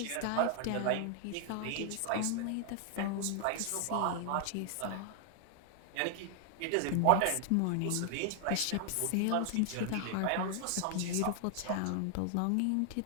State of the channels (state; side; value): different; both; correlation 0.00